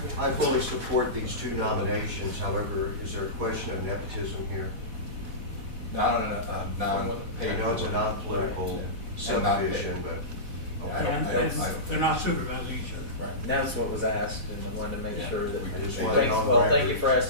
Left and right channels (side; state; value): left; late; 4.1 ms